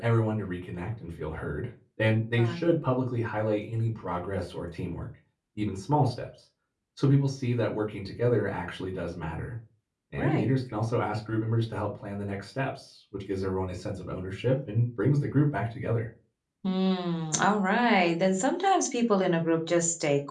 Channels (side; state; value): both; identical; correlation 1.00